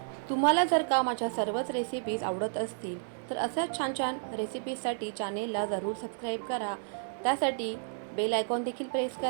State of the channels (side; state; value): left; silent; digital silence